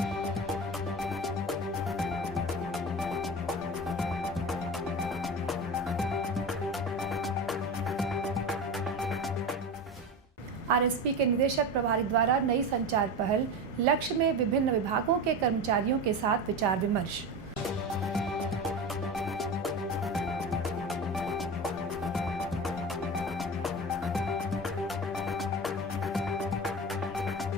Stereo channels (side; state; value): both; normal; correlation 0.26